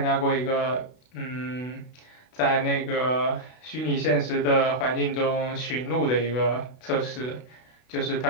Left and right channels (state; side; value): late; right; 32 ms